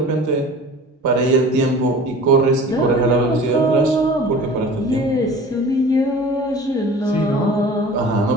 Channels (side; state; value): both; normal; correlation 0.41